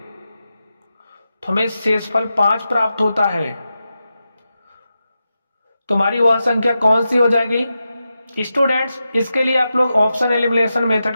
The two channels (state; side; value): inverted; both; correlation -0.90